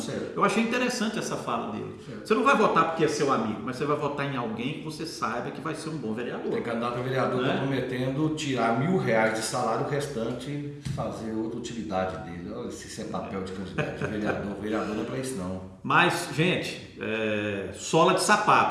Eu achei interessante essa fala dele. Você não vai votar porque é seu amigo, mas você vai votar em alguém que você saiba que vai ser um bom vereador. Tem candidato a vereador que está prometendo tirar R$1.000 de salário, o restante fazer outra utilidade dele. Olha, se isso é papel de candidato de vereador, vereador não é para isso não. Mas, gente, sola de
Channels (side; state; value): both; identical; correlation 1.00